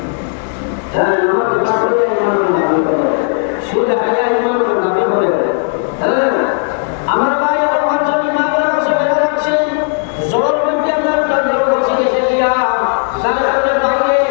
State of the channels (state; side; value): silent; right; 57 dB below the other